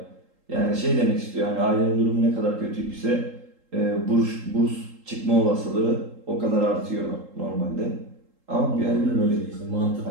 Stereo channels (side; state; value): left; late; 3.8 ms